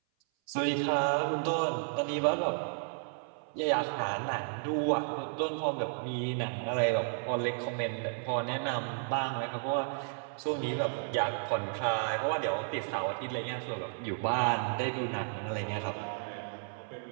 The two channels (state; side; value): silent; left; 56 dB below the other